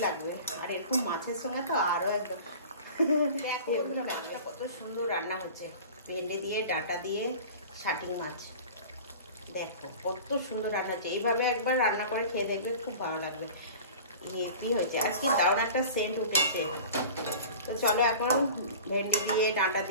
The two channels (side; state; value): both; inverted; correlation -0.39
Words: লাগবে। আর এরকম মাছের সঙ্গে তো আরো একদম দেখো মাছটা কত সুন্দর রান্না হচ্ছে। ভেন্ডি দিয়ে ডাঁটা দিয়ে শাটিং মাছ, দেখো কত সুন্দর রান্না হচ্ছে। এইভাবে একবার রান্না করে খেয়ে দেখবে, খুব ভালো লাগবে। কি হয়েছে আর কি দারুণ একটা সেন্ট উঠেছে। তো চলো এখন ভেন্ডি দিয়ে ডাঁটা